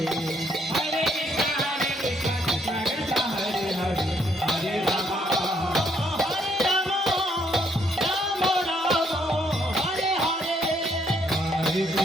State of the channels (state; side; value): normal; both; correlation 0.70